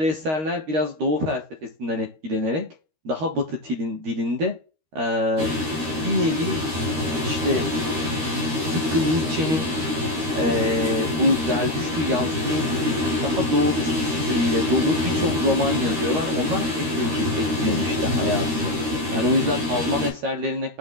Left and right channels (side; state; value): left; late; 13 ms